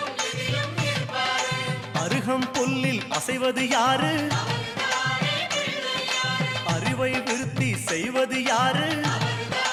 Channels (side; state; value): both; identical; correlation 1.00